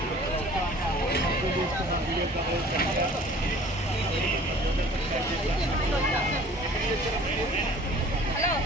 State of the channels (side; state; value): both; normal; correlation 0.49